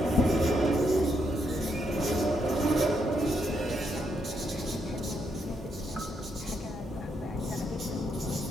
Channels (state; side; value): normal; both; correlation 0.78